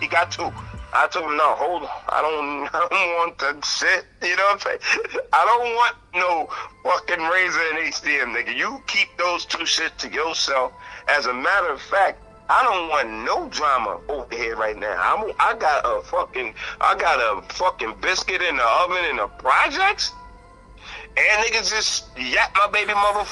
2. I told him, no, hold on. I don't want that shit. You know what I'm saying? I don't want no fucking razor and HDM, nigga. You keep those 2 shit to yourself. As a matter of fact, I don't want no drama over here right now. I got a fucking biscuit in the oven in the projects. And niggas just yap my baby mother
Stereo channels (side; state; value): both; identical; correlation 1.00